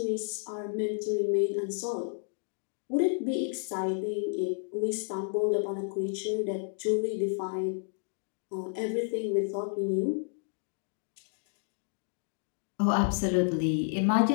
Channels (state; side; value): silent; right; digital silence